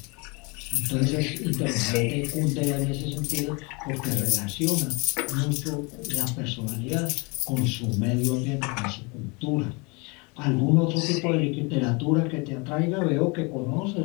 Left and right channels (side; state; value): right; quieter; 29.5 dB